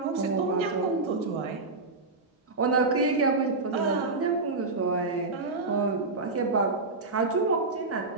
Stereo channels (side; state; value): left; quieter; 3.5 dB